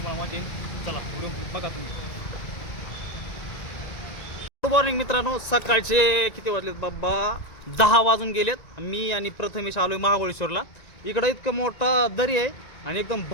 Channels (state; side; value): late; right; 1.9 ms